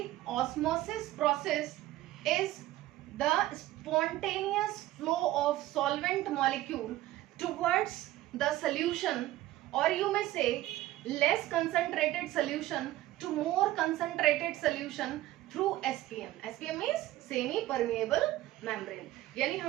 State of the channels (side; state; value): left; quieter; 15.7 dB